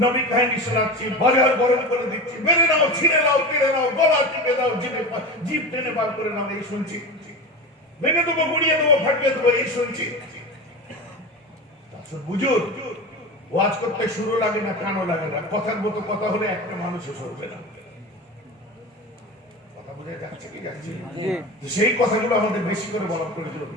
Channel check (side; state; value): both; normal; correlation 0.27